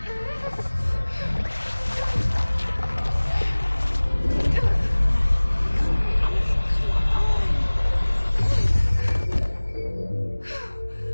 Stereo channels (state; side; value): inverted; both; correlation -1.00